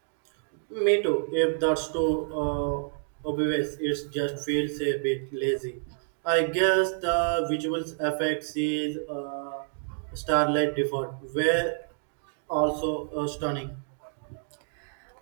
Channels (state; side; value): silent; left; digital silence